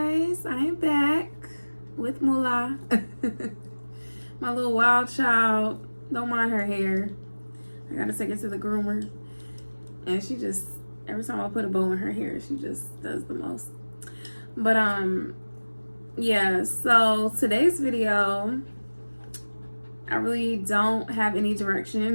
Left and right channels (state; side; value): inverted; both; correlation -1.00